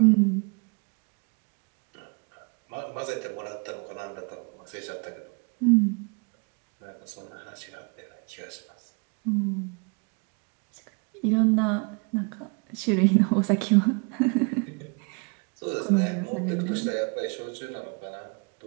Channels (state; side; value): quieter; left; 34.4 dB